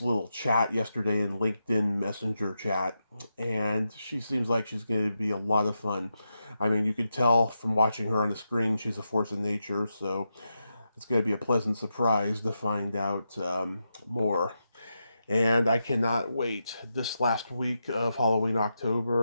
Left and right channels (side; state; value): both; inverted; correlation -0.87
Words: chat yesterday in LinkedIn Messenger chat, and she seems like she's going to be a lot of fun. I mean, you could tell from watching her on the screen, she's a force of nature, so it's going to be a pleasant surprise to find out more. And I cannot wait. This last week of Halloween